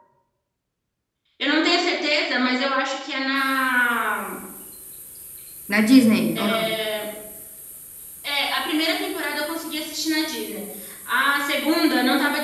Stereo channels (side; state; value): both; identical; correlation 1.00